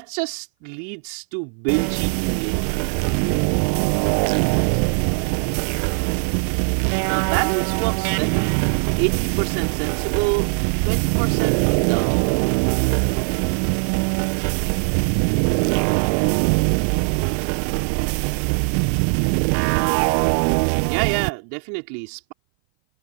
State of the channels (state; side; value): silent; left; 58 dB below the other